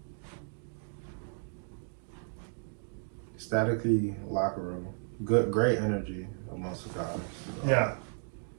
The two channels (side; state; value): left; silent; 55 dB below the other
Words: Staticky locker room. Great energy amongst the guys. Yeah.